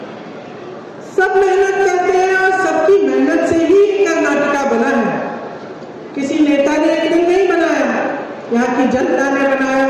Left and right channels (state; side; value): identical; both; correlation 1.00